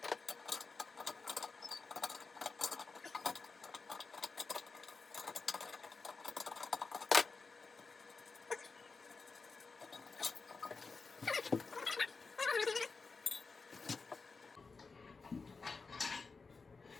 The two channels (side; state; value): right; quieter; 4.4 dB